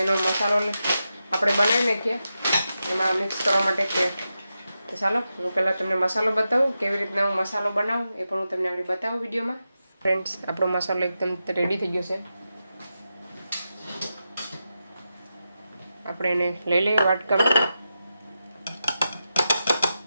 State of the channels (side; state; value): both; inverted; correlation -0.89